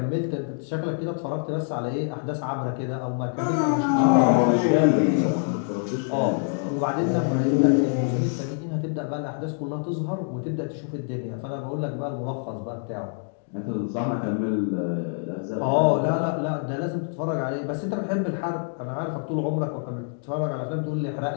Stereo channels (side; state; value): right; silent; 61 dB below the other